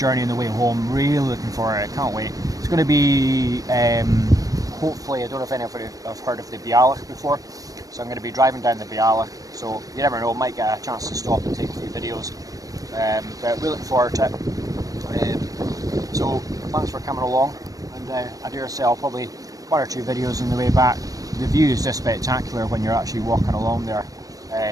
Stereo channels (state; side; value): late; left; 0.17 ms